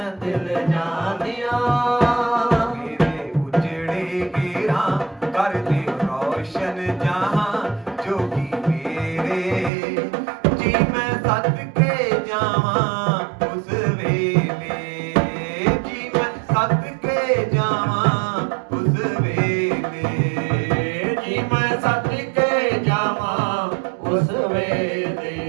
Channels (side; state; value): left; drops out; at 9.7 s